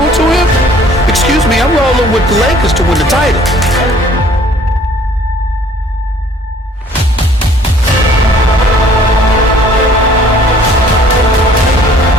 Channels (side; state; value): both; normal; correlation 0.56